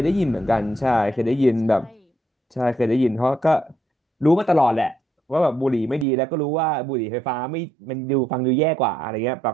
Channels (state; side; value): drops out; left; at 6.1 s